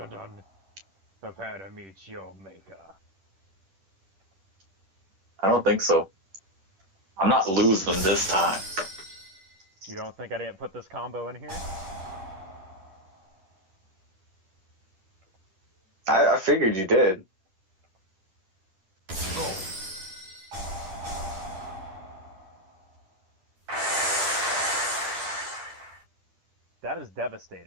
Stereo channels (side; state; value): left; late; 10 ms